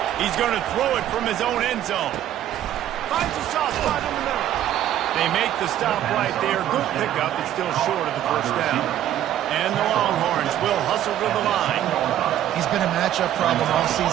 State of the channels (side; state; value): left; quieter; 11.8 dB